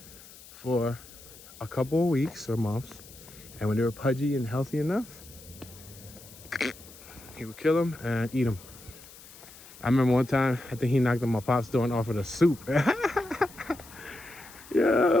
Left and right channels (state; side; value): noise; left; hiss, 19 dB below the sound